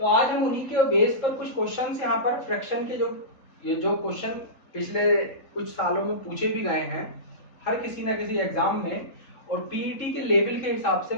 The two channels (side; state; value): right; late; 3.7 ms